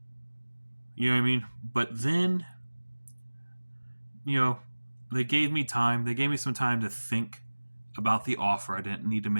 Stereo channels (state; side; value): inverted; both; correlation -1.00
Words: You know what I mean? But then, they gave me time. They gave me some time to think about the offer. I didn't need to